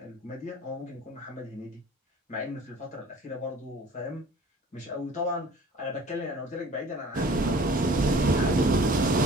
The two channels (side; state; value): both; normal; correlation 0.47